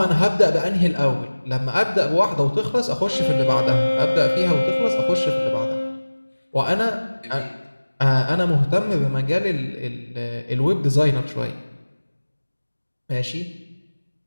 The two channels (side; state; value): both; inverted; correlation -1.00